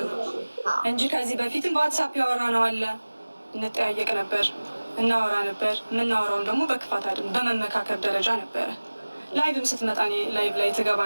እንጂ ከዚህ በፊትም በዋትሳፕ ያወራ ነው አለ እንጠያየቅ ነበር። እናወራ ነበር። የምናወራውም ደግሞ በክፋት አይደለም፣ በመመካከር ደረጃ ነበረ። ላይቭም ስትመጣ እኔ ላይቭ ላይ ትገባ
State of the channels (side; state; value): both; inverted; correlation -1.00